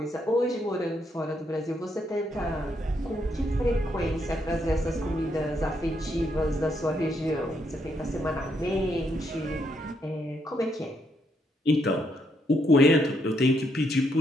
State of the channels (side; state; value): both; normal; correlation 0.76